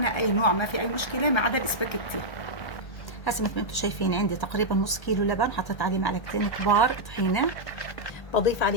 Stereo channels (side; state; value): right; late; 1.0 ms